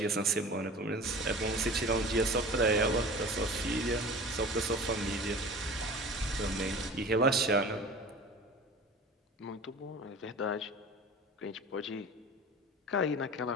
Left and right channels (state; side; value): normal; both; correlation 0.39